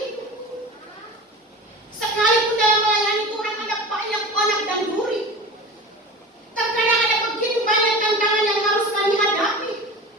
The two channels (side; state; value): both; normal; correlation 0.34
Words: Sekalipun dalam melayani Tuhan ada banyak onak dan duri. Terkadang ada begitu banyak tantangan yang harus kami hadapi.